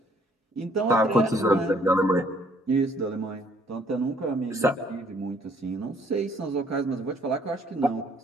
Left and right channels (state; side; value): normal; both; correlation 0.63